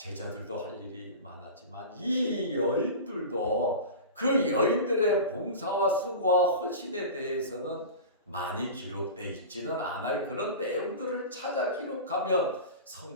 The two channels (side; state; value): both; inverted; correlation -0.31